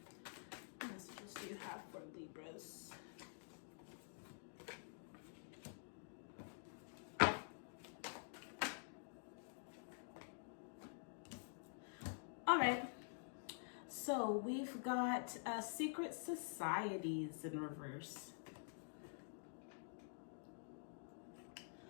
What messages do you have for Libras? All right, so we've got secret societies in reverse.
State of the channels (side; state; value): right; silent; digital silence